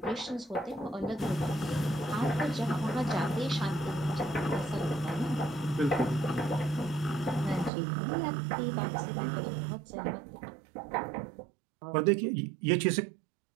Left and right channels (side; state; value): left; drops out; at 7.7 s